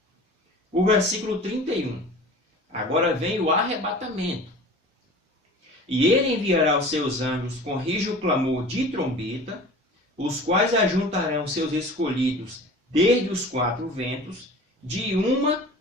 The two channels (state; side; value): normal; both; correlation 0.40